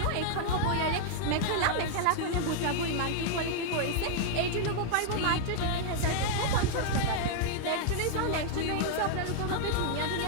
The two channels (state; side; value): different; both; correlation -0.01